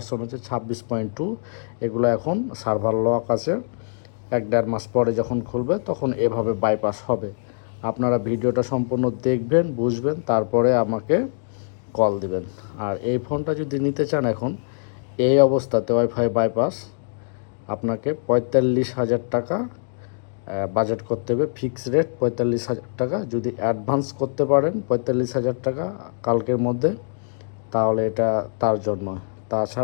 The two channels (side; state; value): right; silent; digital silence